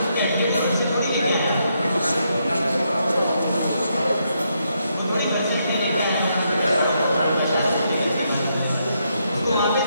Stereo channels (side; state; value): both; inverted; correlation -0.78